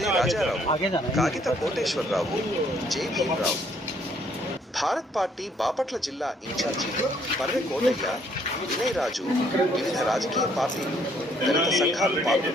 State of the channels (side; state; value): both; normal; correlation 0.65